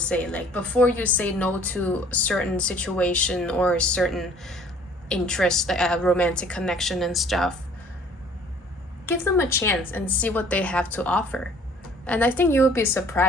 Like, before you say no to a certain situation or a certain interest, like a romantic connection and stuff, give them a chance and see what they have to offer. And I think you will be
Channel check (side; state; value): both; normal; correlation 0.55